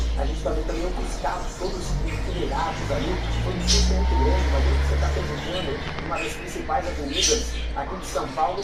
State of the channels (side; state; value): both; identical; correlation 1.00